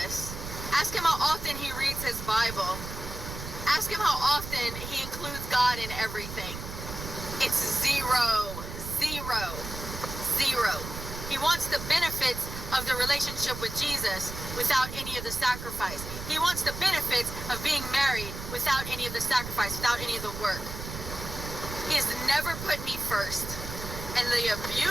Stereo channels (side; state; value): right; noise; rumble, 9 dB below the sound